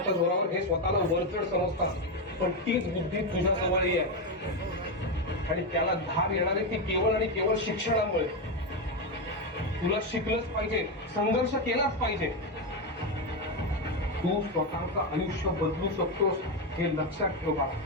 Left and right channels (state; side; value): normal; both; correlation 0.09